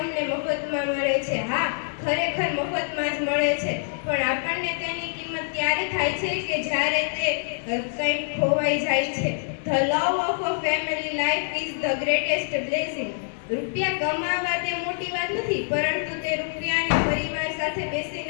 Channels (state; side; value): silent; right; digital silence